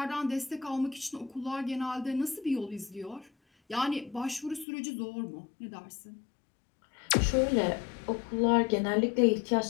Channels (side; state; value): right; drops out; at 4.7 s